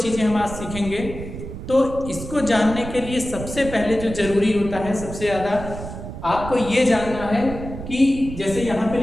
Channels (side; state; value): right; noise; rumble, 10 dB below the sound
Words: हम आज सीखेंगे। तो इसको जानने के लिए सबसे पहले जो जरूरी होता है, सबसे ज़्यादा आपको ये जानना है कि जैसे यहाँ पे